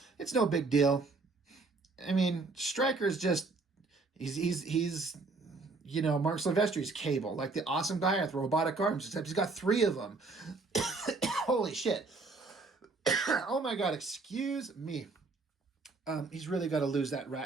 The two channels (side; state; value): left; quieter; 3.8 dB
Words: It's no big deal. I mean, Stryker's just he's Mark Silvestri's Cable, like the awesome guy with robotic arms, except he's got 3 of them. Holy shit. Oh my God, excuse me. He's really got to lose that